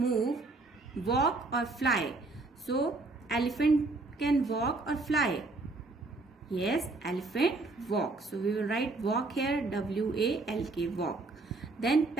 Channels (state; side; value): quieter; left; 3.3 dB